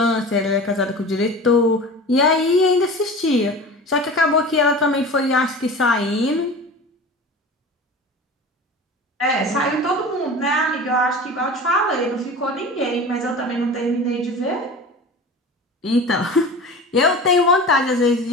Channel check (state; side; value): normal; both; correlation 0.35